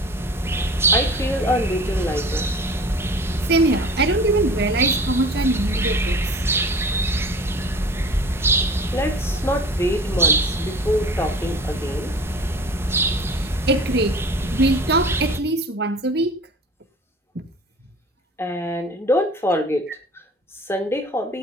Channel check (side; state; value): both; normal; correlation 0.41